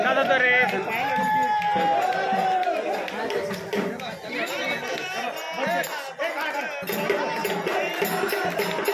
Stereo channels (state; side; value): identical; both; correlation 1.00